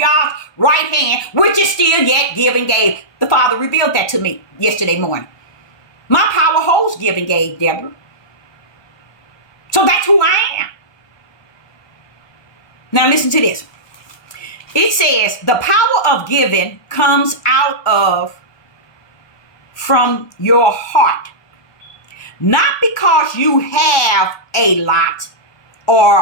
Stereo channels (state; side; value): late; right; 1.2 ms